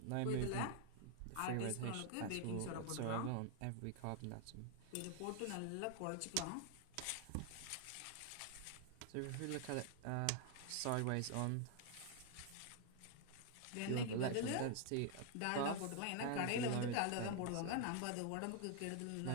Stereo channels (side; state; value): both; different; correlation 0.00